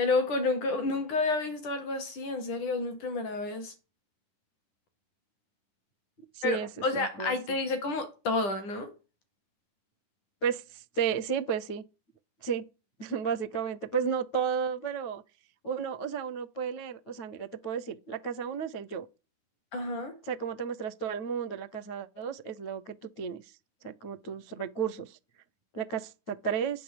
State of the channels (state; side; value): late; right; 10 ms